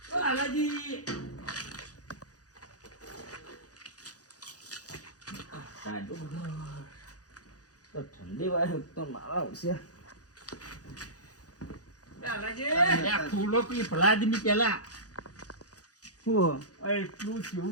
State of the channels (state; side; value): late; right; 0.67 ms